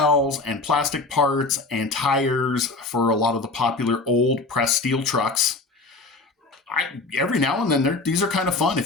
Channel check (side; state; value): right; quieter; 3.5 dB